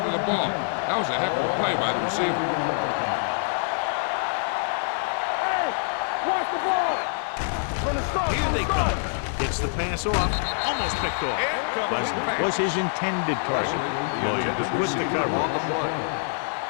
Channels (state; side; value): silent; right; 59 dB below the other